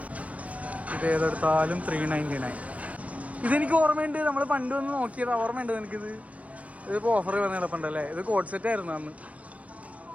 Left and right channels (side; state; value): left; late; 0.067 ms